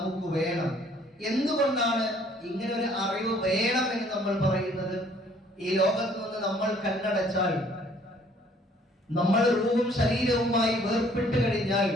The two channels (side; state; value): both; normal; correlation 0.59